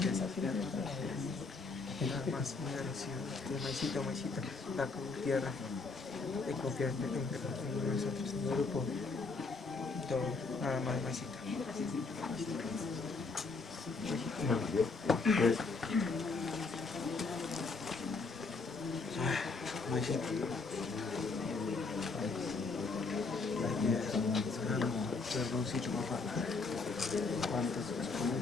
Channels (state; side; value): quieter; right; 4.1 dB